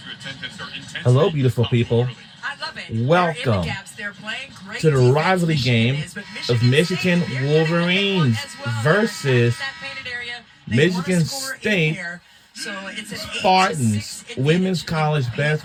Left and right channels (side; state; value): both; identical; correlation 1.00